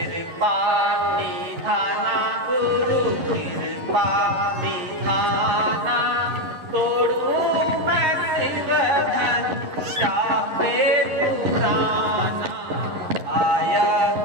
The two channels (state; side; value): late; left; 11 ms